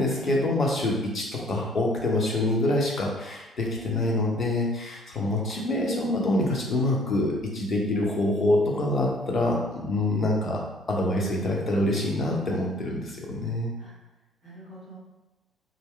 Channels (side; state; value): both; normal; correlation 0.57